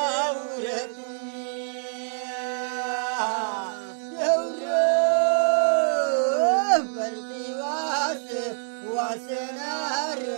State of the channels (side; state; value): left; silent; 61 dB below the other